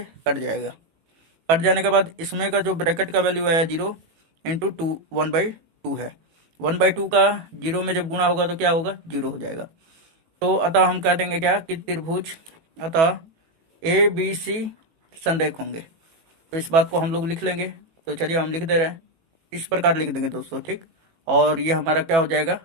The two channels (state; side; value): late; left; 18 ms